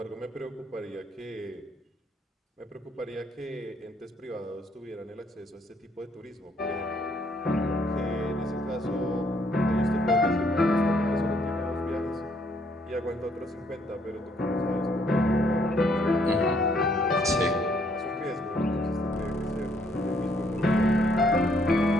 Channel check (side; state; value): both; normal; correlation 0.68